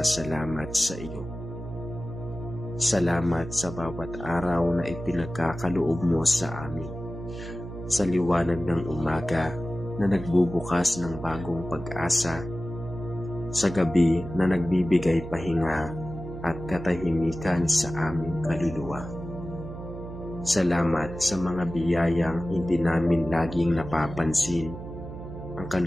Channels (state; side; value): noise; right; hum, 10 dB below the sound